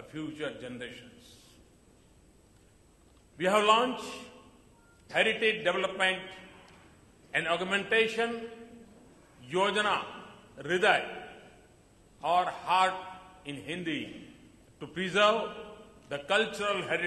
future generations. We have launched Heritage Development and Augmentation Yojana Hriday, or Heart in Hindi, to preserve the cultural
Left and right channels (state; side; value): identical; both; correlation 1.00